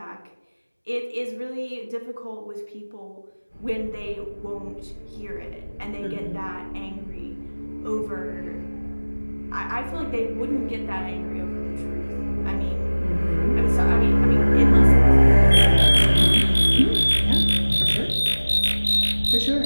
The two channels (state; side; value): inverted; both; correlation -1.00